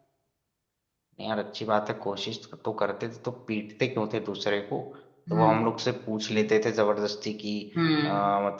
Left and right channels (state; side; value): identical; both; correlation 1.00